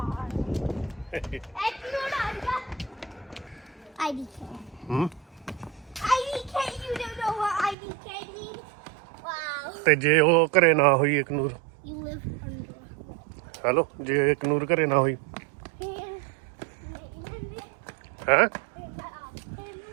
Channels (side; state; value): left; drops out; at 7.8 s